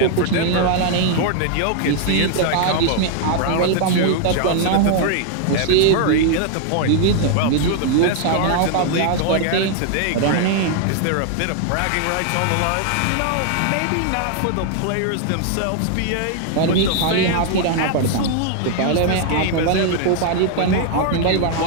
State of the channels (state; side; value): different; both; correlation 0.00